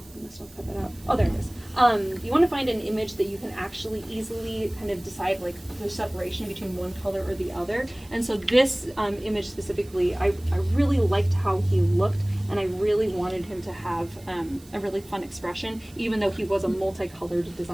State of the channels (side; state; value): right; noise; hiss, 24 dB below the sound